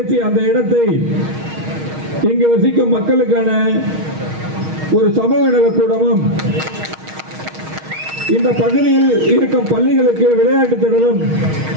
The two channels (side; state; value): left; late; 6.4 ms